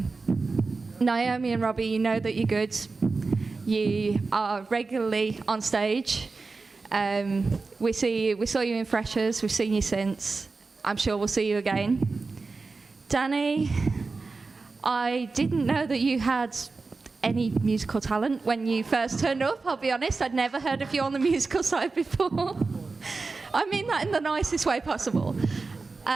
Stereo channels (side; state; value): left; quieter; 4.0 dB